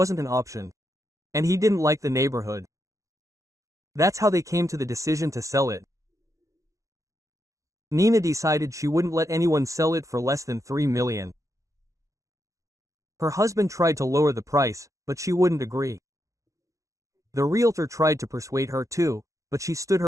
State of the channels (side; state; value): left; late; 0.15 ms